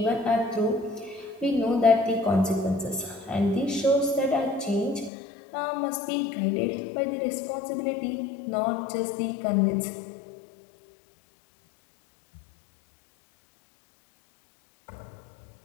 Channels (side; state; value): right; drops out; at 5.1 s